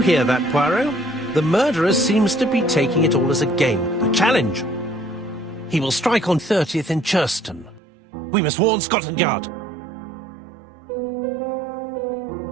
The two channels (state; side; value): drops out; left; at 7.8 s